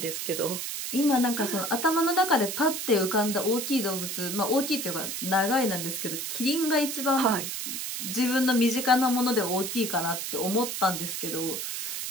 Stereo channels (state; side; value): noise; right; hiss, 4 dB below the sound